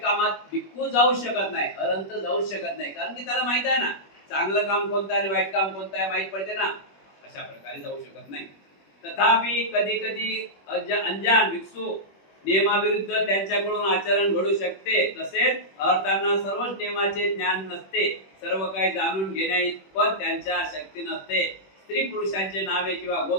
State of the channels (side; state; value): right; late; 21 ms